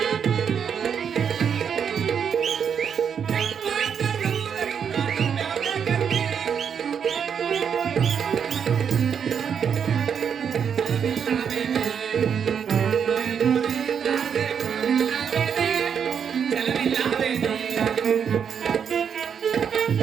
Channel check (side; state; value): left; quieter; 7.4 dB